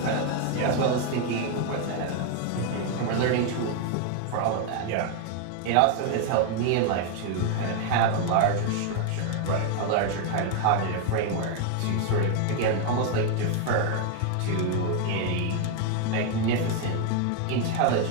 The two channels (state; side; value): different; both; correlation 0.01